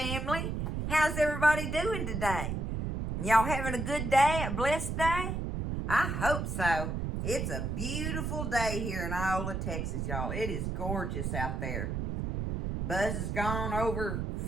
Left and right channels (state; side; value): noise; right; rumble, 2 dB below the sound